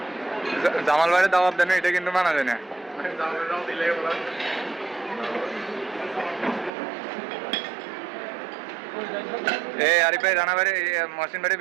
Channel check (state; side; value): drops out; left; at 6.7 s